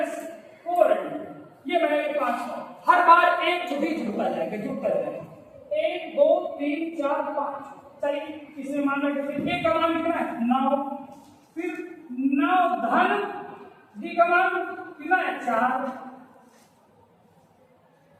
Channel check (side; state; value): both; identical; correlation 1.00